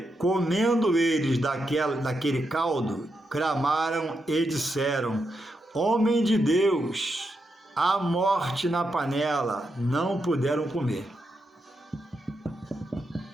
comendo eles daquele caldo, clamaram e disseram: homem de Deus, há morte na panela. Não puderam comer.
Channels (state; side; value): normal; both; correlation 0.84